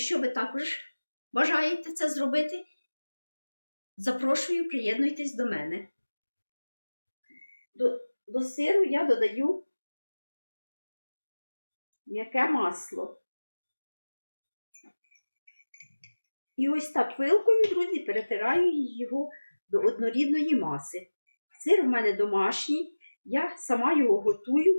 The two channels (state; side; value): inverted; both; correlation -1.00